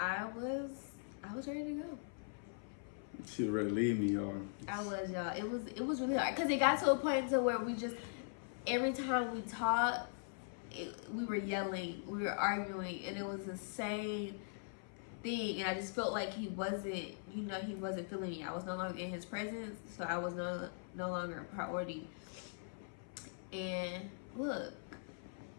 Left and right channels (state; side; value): silent; right; 50 dB below the other